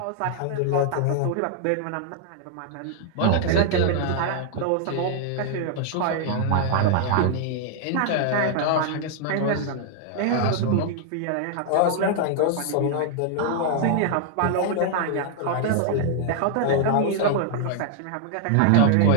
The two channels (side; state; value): both; different; correlation 0.00